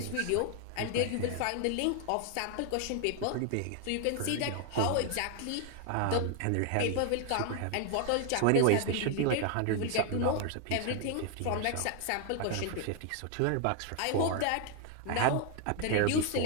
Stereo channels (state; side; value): different; both; correlation 0.00